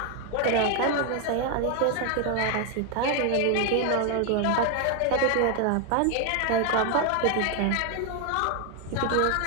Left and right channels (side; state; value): both; different; correlation 0.01